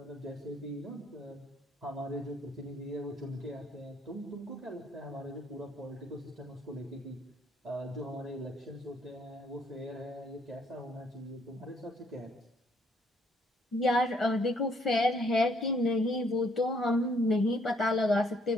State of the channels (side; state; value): both; normal; correlation 0.67